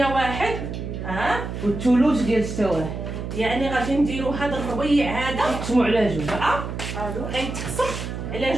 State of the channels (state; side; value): noise; right; hum, 6 dB below the sound